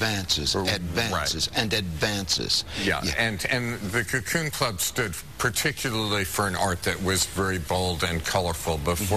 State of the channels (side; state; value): both; identical; correlation 1.00